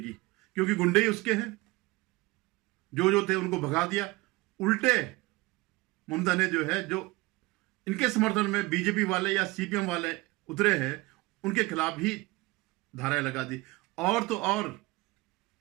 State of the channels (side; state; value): left; quieter; 21.8 dB